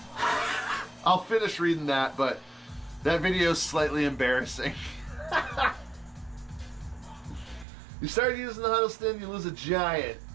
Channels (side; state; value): left; drops out; at 7.7 s